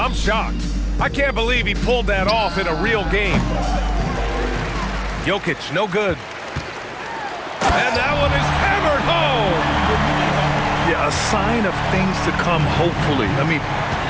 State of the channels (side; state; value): both; identical; correlation 1.00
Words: shocked. I can't believe he pulled that off in a real game. Jokic, no good. And that one is hammered home. Yeah, a sign of things to come, hopefully. I mean,